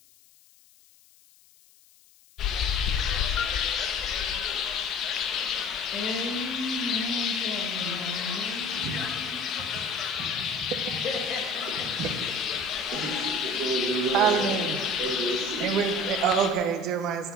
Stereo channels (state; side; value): noise; left; hiss, 28 dB below the sound